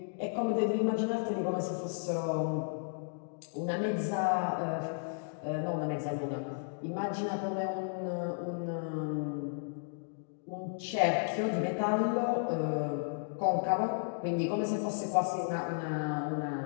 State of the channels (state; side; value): silent; right; digital silence